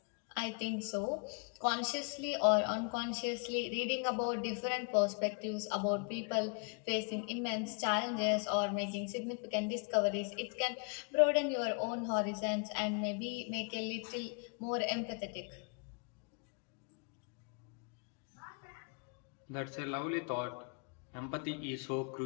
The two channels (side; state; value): right; quieter; 37.6 dB